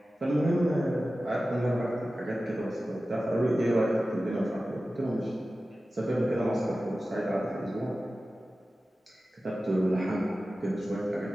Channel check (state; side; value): normal; both; correlation 0.95